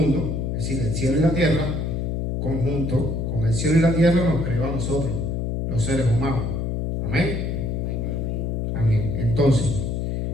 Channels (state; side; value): noise; left; hum, 1 dB below the sound